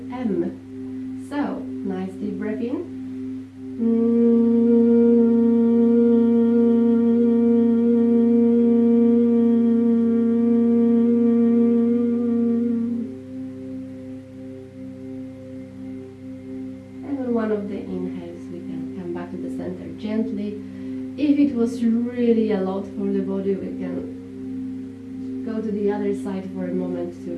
M. So, nice deep breath in. One of the inhales, we can come back to the center gently. If it was really a lot for the body, we can go to the other side for a moment to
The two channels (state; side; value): identical; both; correlation 1.00